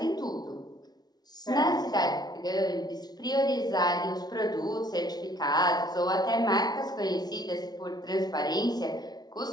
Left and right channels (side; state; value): right; late; 0.19 ms